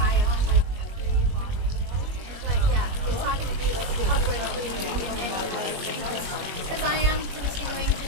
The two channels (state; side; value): late; left; 21 ms